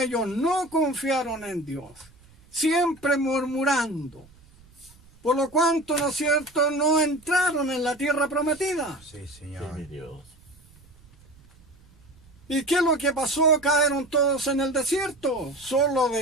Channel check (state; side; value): noise; right; rumble, 27 dB below the sound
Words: no confiaron en Dios, siempre murmurando, por lo cuanto, ¿no es cierto?, no entraron en la tierra prometida. Sí, Sí, Señor. mi Dios. ¿Y qué es lo que pasó? Cayeron todos en el desierto. Solo